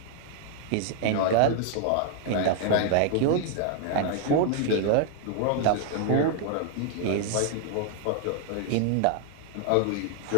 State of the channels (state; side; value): different; both; correlation 0.00